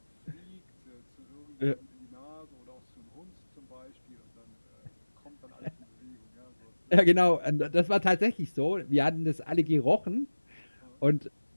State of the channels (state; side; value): inverted; both; correlation -1.00